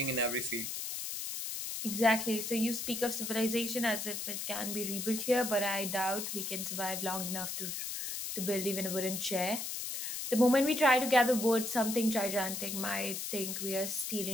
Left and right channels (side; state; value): left; noise; hiss, 4 dB below the sound